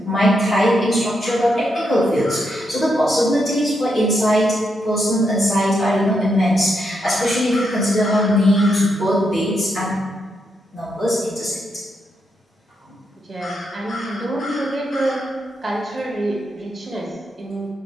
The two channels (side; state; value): both; normal; correlation 0.81